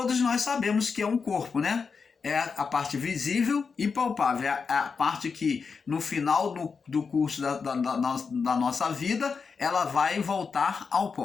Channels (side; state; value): right; quieter; 5.4 dB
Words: nós sabemos que é um corpo, né? É a parte visível e palpável, é a parte que no final do curso da nossa vida, ela vai voltar ao